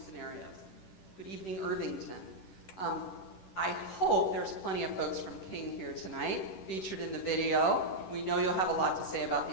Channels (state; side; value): late; right; 10 ms